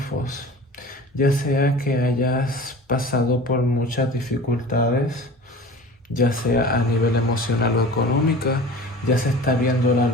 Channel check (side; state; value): both; normal; correlation 0.39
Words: ya sea que hayas pasado por muchas dificultades, ya sea a nivel emocional o económica, ya se está viendo la